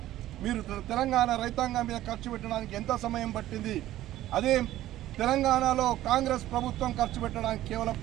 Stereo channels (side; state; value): left; quieter; 14.2 dB